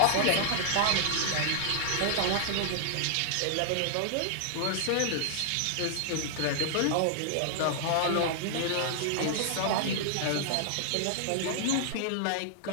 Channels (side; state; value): both; different; correlation -0.01